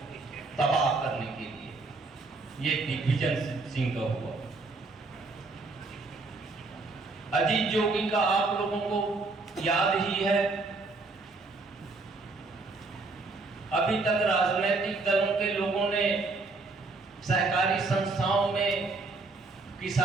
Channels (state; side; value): quieter; left; 3.6 dB